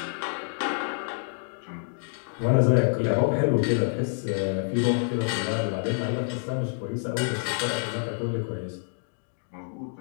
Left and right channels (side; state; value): right; silent; digital silence